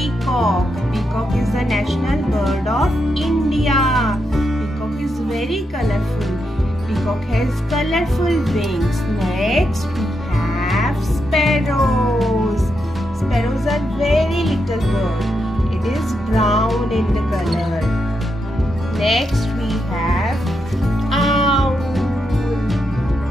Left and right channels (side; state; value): both; normal; correlation 0.83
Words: Peacock is the national bird of India. Peacock is very colorful. Peacock has colorful wings. Next, we have sparrows. Sparrows are very little bird. It is brown in the color. Next, we have owl.